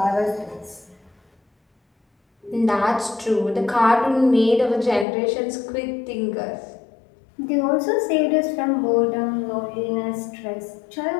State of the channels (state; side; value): drops out; right; at 5.1 s